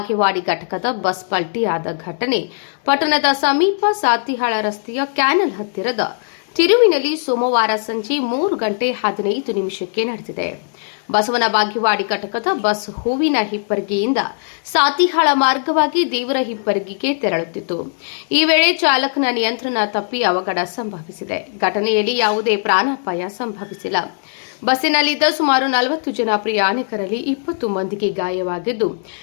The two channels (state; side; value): silent; right; digital silence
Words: ಘಟಕದ ಬಸ್ ಪಲ್ಟಿಯಾದ ಘಟನೆ ಪಟ್ಟಣದ ಸಮೀಪ ಸಾತಿಹಾಳ ರಸ್ತೆಯ ಕ್ಯಾನಲ್ ಹತ್ತಿರದ ತಿರುವಿನಲ್ಲಿ ಸೋಮವಾರ ಸಂಜೆ 3:15 ನಡೆದಿದೆ. ಬಸವನ ಬಾಗೇವಾಡಿ ಘಟಕದ ಬಸ್ ಹೂವಿನ ಹಿಪ್ಪರಗಿಯಿಂದ ಸಾತಿಹಾಳ ಮಾರ್ಗವಾಗಿ ದೇವರ ಹಿಪ್ಪರಗಿಗೆ ತೆರಳುತ್ತಿತ್ತು. ಈ ವೇಳೆ ಚಾಲಕನ ನಿಯಂತ್ರಣ ತಪ್ಪಿ ಅವಘಡ ಸಂಭವಿಸಿದೆ. ಘಟನೆಯಲ್ಲಿ ಯಾವುದೇ ಪ್ರಾಣಾಪಾಯ ಸಂಭವಿಸಿಲ್ಲ. ಬಸ್ಸಿನಲ್ಲಿದ್ದ ಸುಮಾರು 40 ಜನ ಪ್ರಯಾಣಿಕರಲ್ಲಿ 20 ಮಂದಿಗೆ ಗಾಯವಾಗಿದ್ದು,